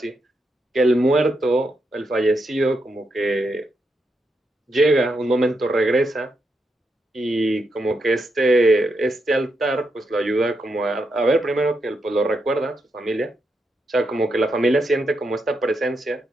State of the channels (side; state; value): both; normal; correlation 0.83